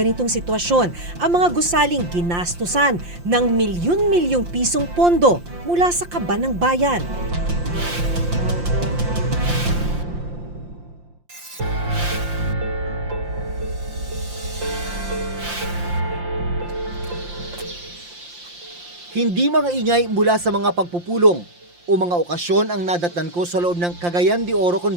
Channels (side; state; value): left; late; 5.7 ms